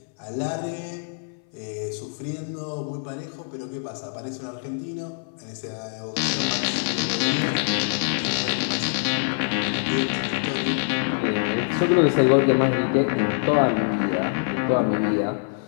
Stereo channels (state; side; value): silent; right; 58 dB below the other